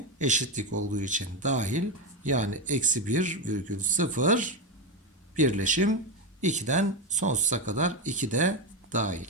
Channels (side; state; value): both; normal; correlation 0.13